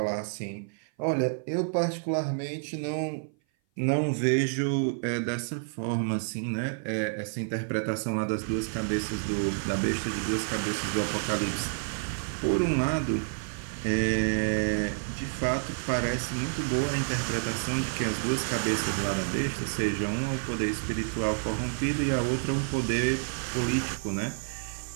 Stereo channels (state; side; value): silent; left; 56 dB below the other